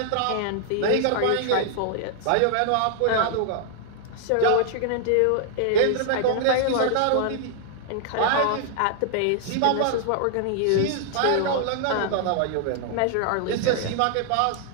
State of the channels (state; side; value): different; both; correlation -0.01